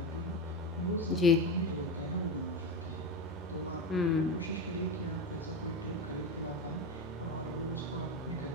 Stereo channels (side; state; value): both; normal; correlation 0.19